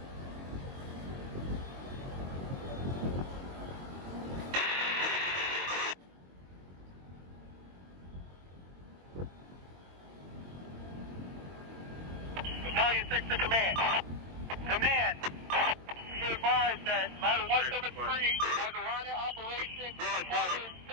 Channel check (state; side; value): late; left; 22 ms